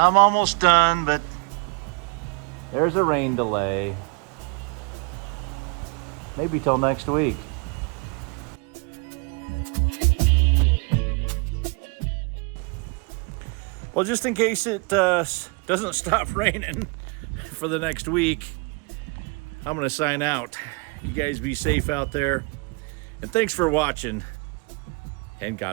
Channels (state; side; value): quieter; left; 31.1 dB